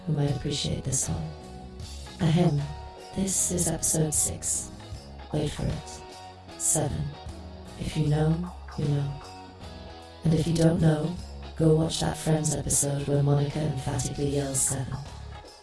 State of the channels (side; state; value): both; identical; correlation 1.00